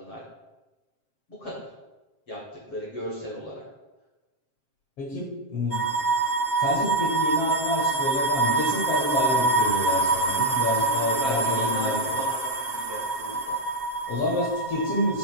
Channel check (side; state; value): right; late; 7.5 ms